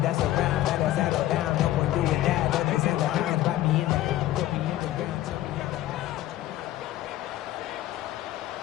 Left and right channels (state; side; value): quieter; right; 14.4 dB